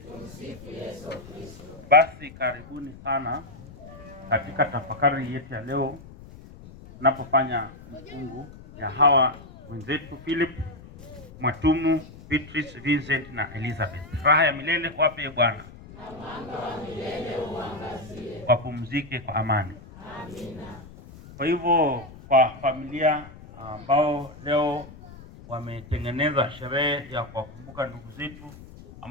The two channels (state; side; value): noise; left; rumble, 18 dB below the sound